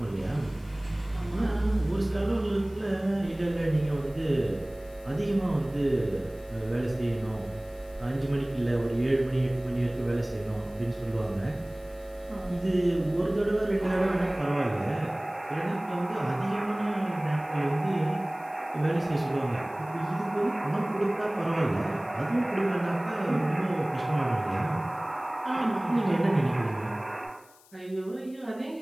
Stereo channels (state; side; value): noise; left; hiss, 27 dB below the sound